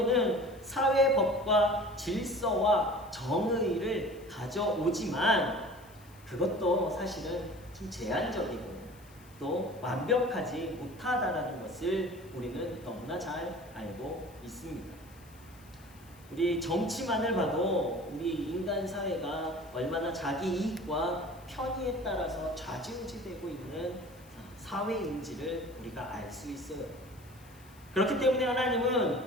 사회 법과 질서와 정의를 가져오지만 그것도 사실은 좀 제한적이고 또 완벽하지 못하다라는 것을 우리는 너무나 잘 알고 있습니다. 우리 정치만을 봐도 우리 인간 사회가 얼마나 자기 이익과 편의에 따라서 좌지우지되고 있는 사회인지를 우리가 알 수 있어요. 그렇기 때문에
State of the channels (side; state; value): left; noise; hiss, 25 dB below the sound